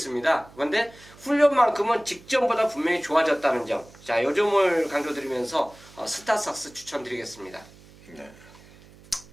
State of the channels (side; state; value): right; noise; hum, 23 dB below the sound